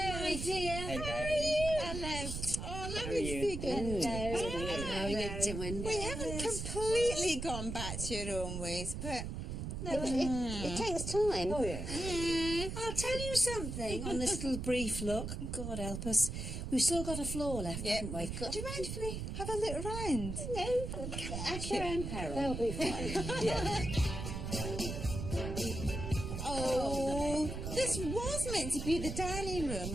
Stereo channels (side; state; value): right; noise; rumble, 5 dB below the sound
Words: My dear. Hello. Oh, let How are me you? see good. How are you doing? We haven't completely gone back to your own ways, but It takes time. Oh, yeah. I'll tell you something on this little brief look. God help us. We've still got a floor left, yeah. haven't we? Do you mind if we have a little round? No, at your own peril. They'll be fine. Yeah. Oh, this was meant to be the dining room,